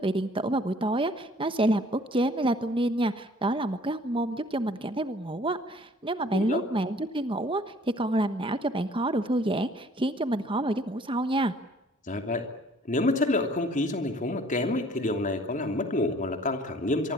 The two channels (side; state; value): both; normal; correlation 0.55